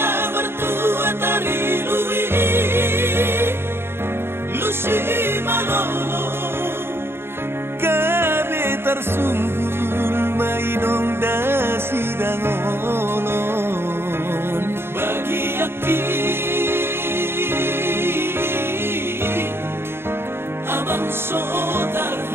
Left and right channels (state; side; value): late; left; 0.11 ms